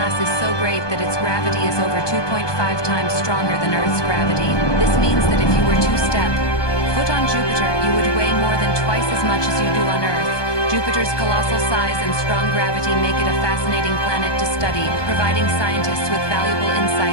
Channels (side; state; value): right; late; 1.2 ms